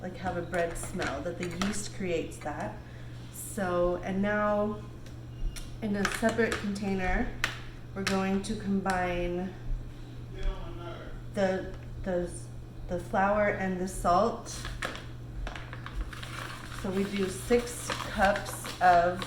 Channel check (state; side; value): identical; both; correlation 1.00